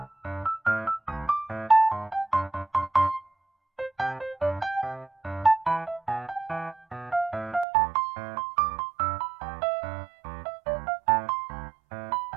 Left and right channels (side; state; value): left; drops out; at 7.7 s